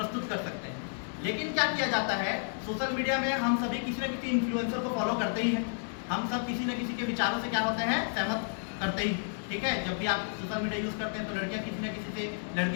कर सकते हैं। लेकिन क्या किया जाता है, सोशल मीडिया में हम सभी किसी न किसी इन्फ्लुएंसर को फॉलो करते ही हैं, हम सब किसी न किसी के विचारों से क्या होते हैं, सहमत करते ही, ठीक है। जब भी आप सोशल मीडिया यूज़ करते हैं तो लड़कियां किसी न किसी से,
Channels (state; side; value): silent; right; digital silence